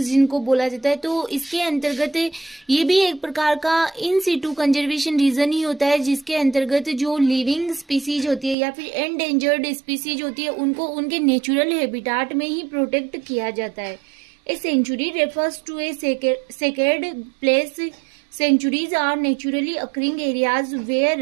बोला जाता है। तो इसके अंतर्गत ये भी एक प्रकार का इन सिटू कंजर्वेशन रीजन ही होता है जिसके अंतर्गत जो लिविंग स्पीसीज होती है या फिर एंडेंजर्ड स्पीसीज होती है उनको उनके नेचुरल हैबिटाट में ही प्रोटेक्ट किया जाता है। A sanctuary refers to a sacred place. Sanctuaries are naturally occurring areas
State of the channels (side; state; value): left; drops out; at 8.6 s